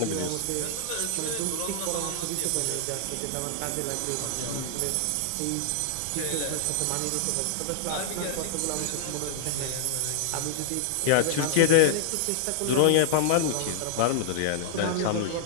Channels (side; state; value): both; different; correlation -0.01